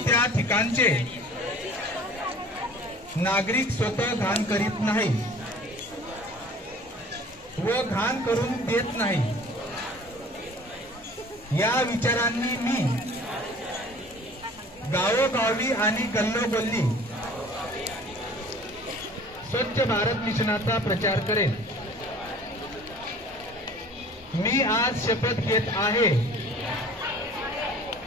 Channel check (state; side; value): normal; both; correlation 0.47